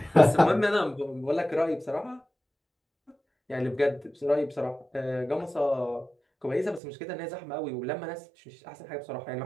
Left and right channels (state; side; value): drops out; left; at 6.8 s